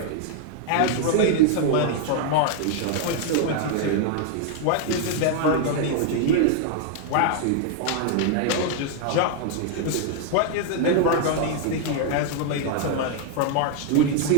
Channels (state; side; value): different; both; correlation 0.00